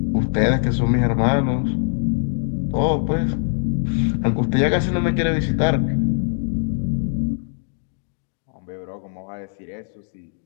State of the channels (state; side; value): silent; right; digital silence